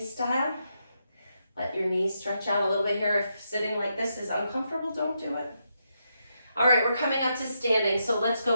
style. Let your knees stretch out a little bit here. If sitting like this is uncomfortable, don't do it. All right, we're coming up to standing. So let's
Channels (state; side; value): inverted; both; correlation -0.82